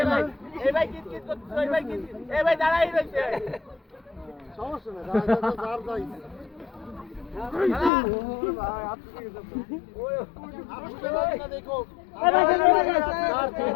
ভাই এই ভাই কিত করছিস ওই ভাই কিত এই ভাই দাঁড়াই রইছে সমস্যা না যার যাই দেখো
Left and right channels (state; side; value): drops out; right; at 7.9 s